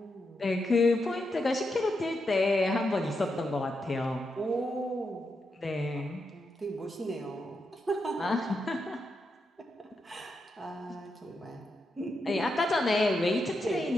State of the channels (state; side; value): normal; both; correlation 0.84